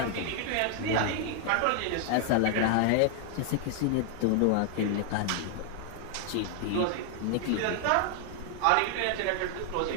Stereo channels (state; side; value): different; both; correlation 0.00